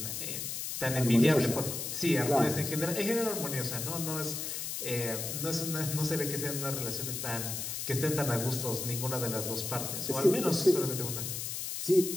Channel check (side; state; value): left; noise; hiss, 4 dB below the sound